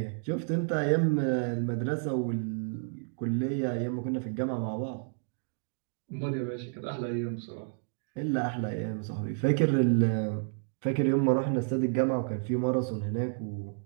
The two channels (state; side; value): silent; left; digital silence